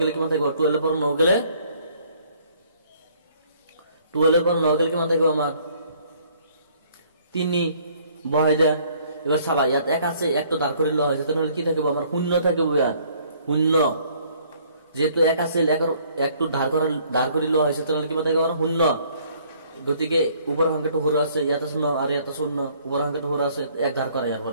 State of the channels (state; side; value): inverted; both; correlation -0.61